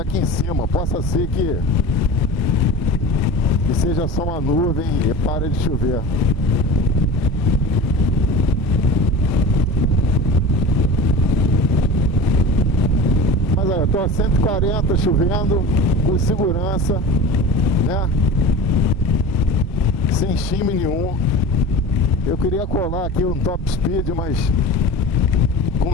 aqui em cima. Possa ser que seja só uma nuvem e pare de chover. Mas olha, eu tô a 140 chovendo, com segurança, né? Sem chime nenhum. Eu queria colar aqui um top speed, mas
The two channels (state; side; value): normal; both; correlation 0.35